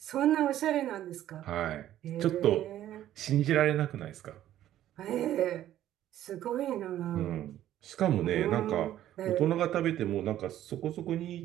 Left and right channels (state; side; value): quieter; left; 12.5 dB